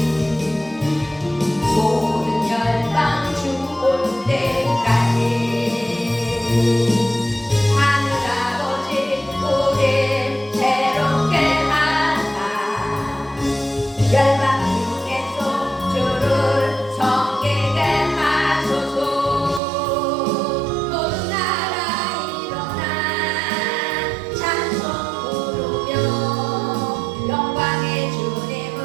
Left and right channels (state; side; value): drops out; left; at 19.6 s